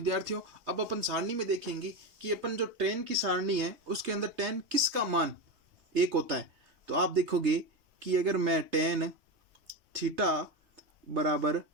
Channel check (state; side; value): late; left; 3.2 ms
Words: अब अपन सारणी में देखेंगे कि अपन जो टेन की सारणी है उसके अंदर टेन किसका मान 1 होता है। तो आप देखोगे कि अगर मैं टेन थीटा बराबर